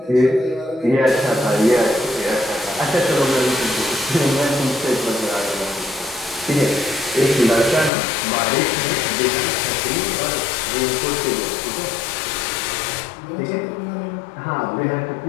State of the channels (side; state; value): right; drops out; at 7.9 s